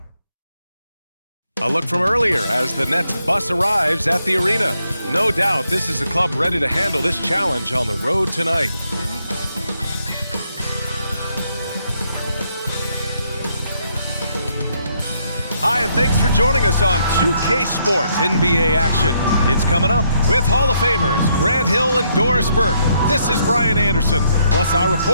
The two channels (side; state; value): both; inverted; correlation -0.74